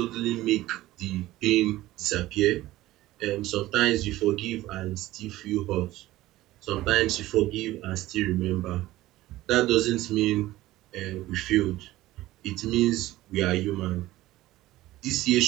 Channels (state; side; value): quieter; left; 16.5 dB